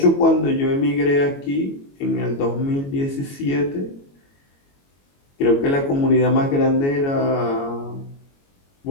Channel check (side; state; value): right; late; 22 ms